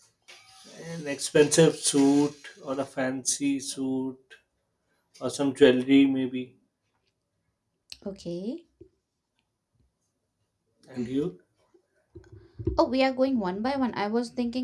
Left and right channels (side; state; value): both; identical; correlation 1.00